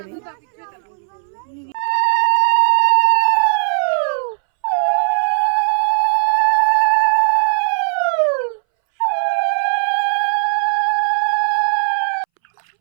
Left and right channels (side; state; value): left; silent; 65 dB below the other